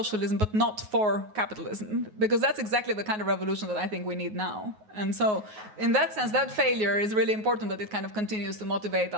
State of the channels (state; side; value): late; left; 9.4 ms